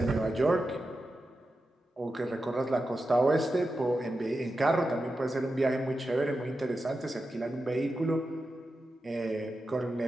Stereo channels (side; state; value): both; normal; correlation 0.90